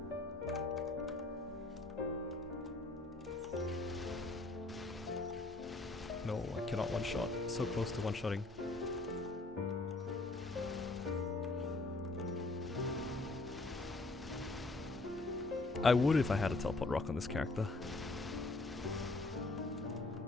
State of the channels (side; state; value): right; quieter; 3.1 dB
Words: No, I cannot one-shot. So close to one-shotting. I would if I had a teleport rock on this character.